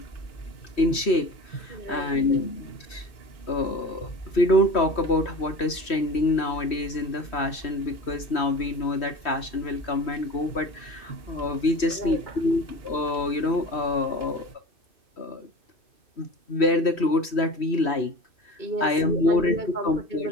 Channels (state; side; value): late; right; 3.1 ms